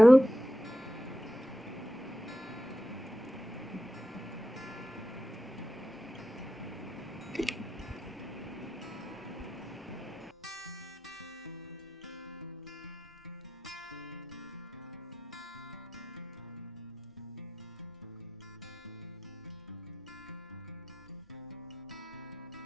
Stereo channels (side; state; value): both; normal; correlation 0.89